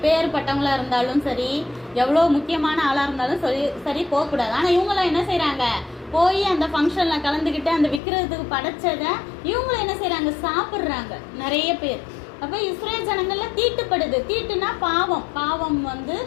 இருந்தாலும் சரி, எவ்வளோ முக்கியமான ஆளா இருந்தாலும் சரி போகக்கூடாது. ஆனா இவங்களாம் என்ன செய்யறாங்க, போய் அந்த ஃபங்க்ஷன்ல கலந்துக்கிட்டு அந்த விற்கிறதுக்கு படைச்சதை இவங்களும் என்ன செய்யறாங்க, சாப்பிட்றாங்க நிறைய பேர். அப்ப இஸ்ரேல் ஜனங்கள்ல தீட்டுப்படுது. தீட்டுனா பாவம். பாவம்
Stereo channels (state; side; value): drops out; right; at 8.0 s